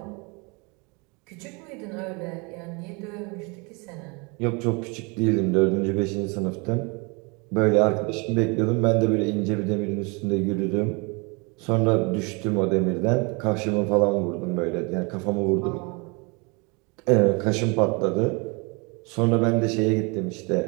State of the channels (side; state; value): left; quieter; 30.2 dB